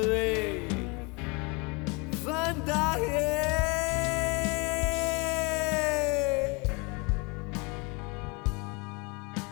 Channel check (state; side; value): quieter; right; 29.3 dB